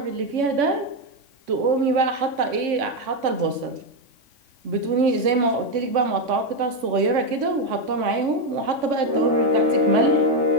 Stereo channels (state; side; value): late; left; 3.6 ms